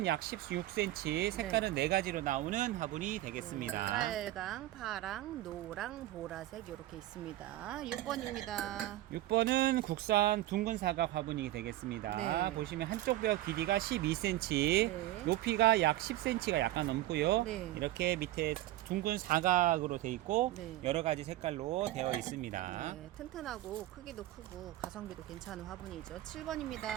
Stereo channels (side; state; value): left; quieter; 15.4 dB